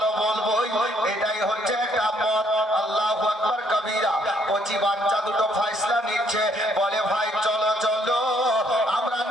বলবোই, এটাই হচ্ছে একটা মত। আল্লাহু আকবার কবীরা। কচি বাচ্চা দুটো ফয়সালা নিচ্ছে, বলে ভাই চলো চলো আমরা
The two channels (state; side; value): normal; both; correlation 0.68